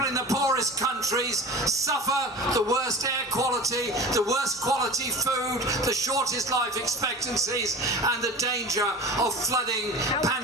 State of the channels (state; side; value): normal; both; correlation 0.35